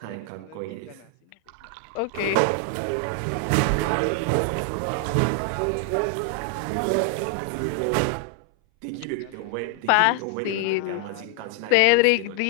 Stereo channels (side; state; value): both; different; correlation 0.00